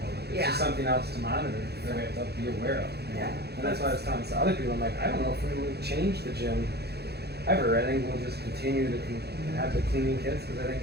It's just something else to monitor that we have to be aware of. Yeah. And that's why I was telling other people, I'm like, I don't know if we would change the gym ever. I think we'll just continue to have the cleaning kits because I think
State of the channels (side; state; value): left; late; 0.47 ms